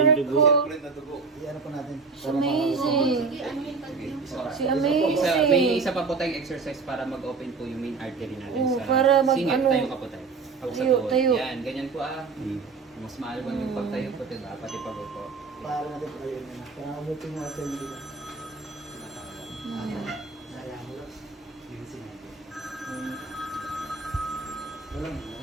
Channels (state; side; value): quieter; left; 4.7 dB